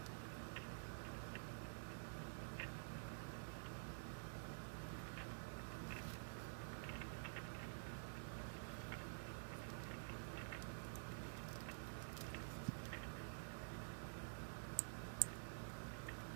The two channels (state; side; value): silent; left; digital silence